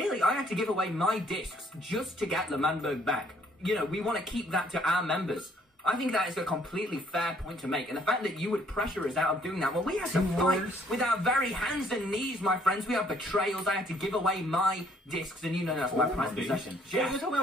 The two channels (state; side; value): normal; both; correlation 0.63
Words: I had to give away my discs just to get the Manburg back. You know, we want to keep that to our members. I think that is a completely fair point to make. And the fact that you would pressure us out of doing that, well, we had to fight with our very hands and knees, my friends. We have betrayals. I had to give away my discs, and you know that's my prized possession. Yeah, you're talking